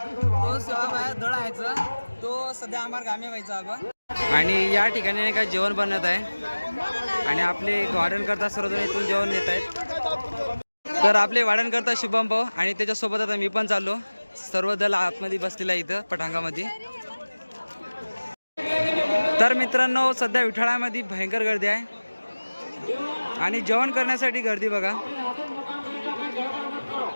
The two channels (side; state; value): both; inverted; correlation -1.00